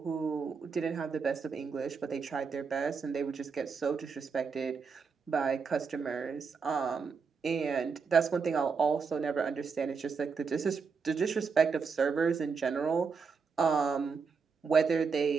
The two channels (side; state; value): left; quieter; 5.4 dB